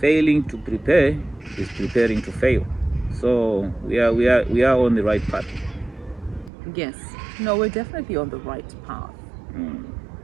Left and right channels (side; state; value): left; drops out; at 6.5 s